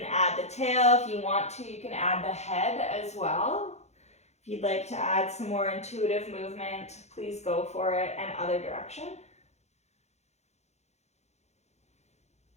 add the tail if you want to. You can add the head as well. If you'd like to add some more intuitive movement, please go for it, and other direction.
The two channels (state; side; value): late; right; 0.32 ms